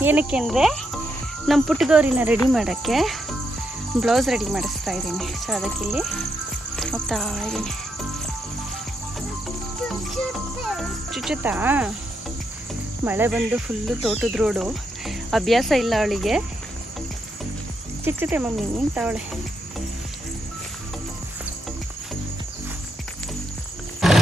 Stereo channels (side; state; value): both; normal; correlation 0.80